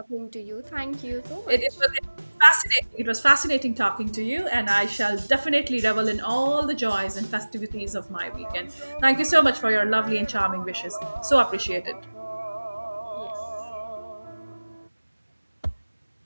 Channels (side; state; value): both; inverted; correlation -1.00